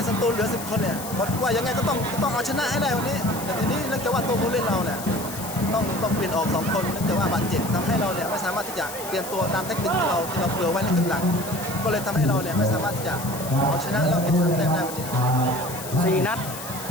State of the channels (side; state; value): left; noise; hiss, 10 dB below the sound